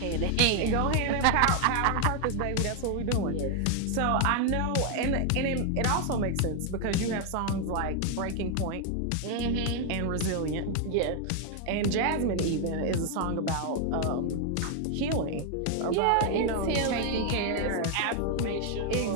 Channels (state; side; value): different; both; correlation 0.00